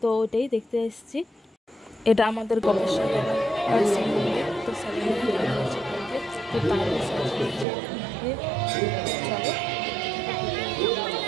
তো ওইটাই দেখতে এসেছি। এটা আমাদের গোপেশ্বর বাবার শিব মন্দির। তো সাজানো ভালো হয়েছে বলতে, তো দারুণ সাজিয়েছে। চলো,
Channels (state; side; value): drops out; left; at 7.7 s